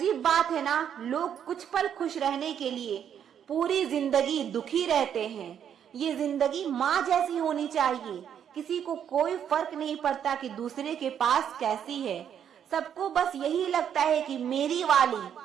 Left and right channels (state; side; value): quieter; left; 8.8 dB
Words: बात है ना, लोग कुछ पल खुश रहने के लिए पूरी जिंदगी दुखी रहते हैं। ये जिंदगी माँ जैसी होनी चाहिए, किसी को कोई फर्क नहीं पड़ता कि दूसरे के पास कैसी है। सबको बस यही लगता है कि मेरी वाली